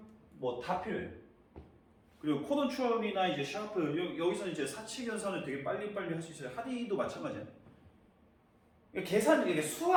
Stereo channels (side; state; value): both; identical; correlation 1.00